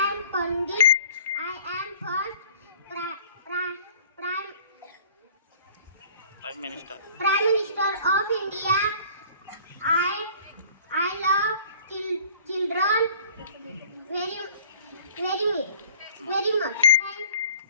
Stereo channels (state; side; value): inverted; both; correlation -0.49